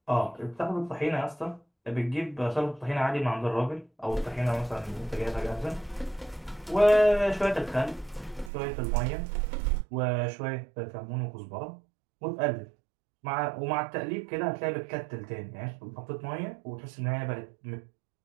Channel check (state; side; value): drops out; left; at 8.5 s